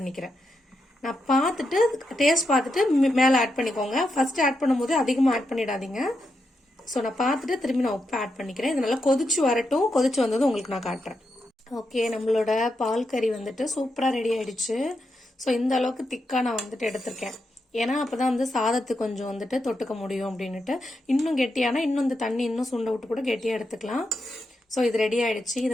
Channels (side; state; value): both; normal; correlation 0.85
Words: நான் பார்த்துட்டு டேஸ்ட் பார்த்துட்டு மேல ஆட் பண்ணிக்கோங்க. ஃபர்ஸ்ட் ஆட் பண்ணும்போது அதிகமா ஆட் பண்ணிடாதீங்க. ஸோ நான் பார்த்துட்டு திரும்பி நான் உப்பு ஆட் பண்ணிக்கிறேன். இது நல்லா கொதிச்சு வரட்டும். கொதிச்சு வந்தது உங்களுக்கு நான் காட்டுறேன். ஓகே, நம்மளோட பால் கறி வந்துட்டு சூப்பரா ரெடி ஆயிடுச்சு. ஸோ இந்த அளவுக்கு திக்கா நான் வந்துட்டு எடுத்திருக்கேன். ஏன்னா அப்பதான் வந்து சாதத்துக்கு கொஞ்சம் வந்துட்டு தொட்டுக்க முடியும் அப்படின்னுட்டு. இன்னும் கெட்டியானா இன்னும் இந்த தண்ணி இன்னும் சுண்ட விட்டு கூட கெட்டியா எடுத்துக்கலாம். ஸோ இது ரெடி ஆயிடுச்சு. இது